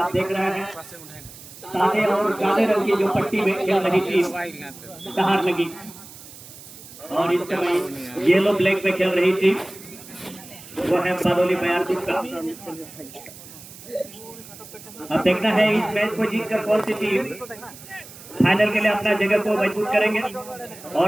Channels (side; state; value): right; noise; hiss, 17 dB below the sound